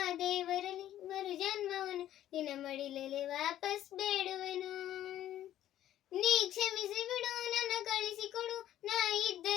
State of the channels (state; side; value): quieter; right; 12.4 dB